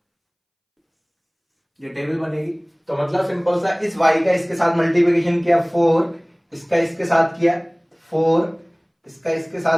ये टेबल बनेगी। तो मतलब सिंपल सा, इस y का इसके साथ मल्टीप्लिकेशन किया 4, इसका इसके साथ किया 4, इसका इसके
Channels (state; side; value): identical; both; correlation 1.00